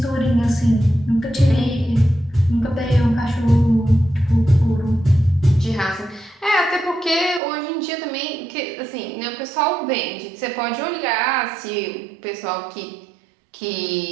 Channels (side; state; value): left; drops out; at 7.4 s